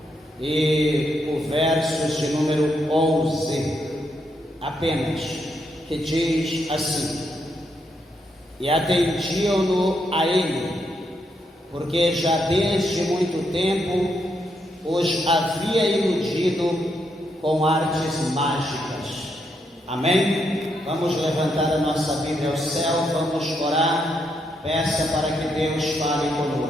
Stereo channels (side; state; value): both; normal; correlation 0.79